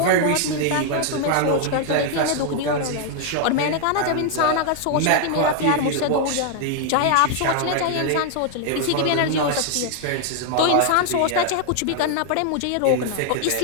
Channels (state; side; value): different; both; correlation 0.00